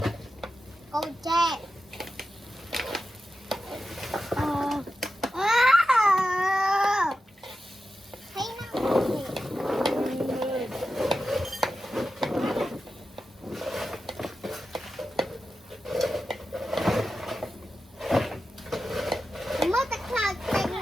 Cô tre. Thấy nó mất cái khăn tên.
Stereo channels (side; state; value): both; normal; correlation 0.91